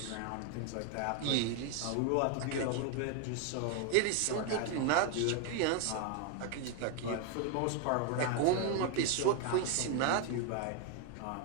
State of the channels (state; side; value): different; both; correlation 0.01